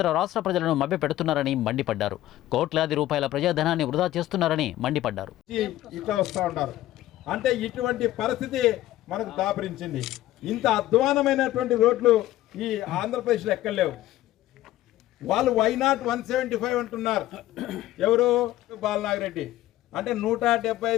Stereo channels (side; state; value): right; quieter; 14.9 dB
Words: రాష్ట్ర ప్రజలను మభ్యపెడుతున్నారని మండిపడ్డారు. కోట్లాది రూపాయల ప్రజాధనాన్ని వృధా చేస్తున్నారని మండిపడ్డారు. అంటే ఇటువంటి పరిస్థితి మనకు దాపరించింది. ఇంత అధ్వానమైనటువంటి రోడ్లు ఈ ఆంధ్రప్రదేశ్లో ఎక్కలేవు. వాళ్ళు వైనాట్ 175 అంటున్నారు. ఎవరు? బాలనాగిరెడ్డి. అంటే